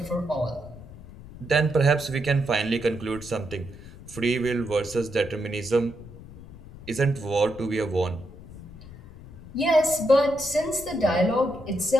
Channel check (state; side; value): noise; left; rumble, 17 dB below the sound